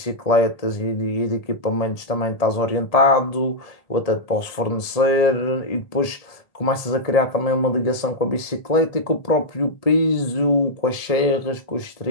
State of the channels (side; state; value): right; late; 1.7 ms